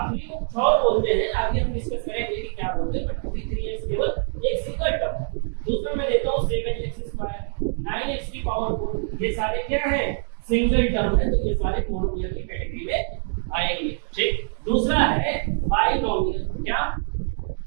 3 को 6 बोलते हैं, आगे हम डिस्कस करेंगे कि क्या बोलते हैं, बट 3x केवल एक सिंगल टर्म है। दूसरा मैं देता हूं 7x², 9x की पावर 4, ये सारे क्या है? सिंगल टर्म है, तो ये सारे मोनोमियल की कैटेगरी में आएंगे। ठीक। दूसरा है बाइनोमियल। क्या?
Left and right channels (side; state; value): left; silent; 59 dB below the other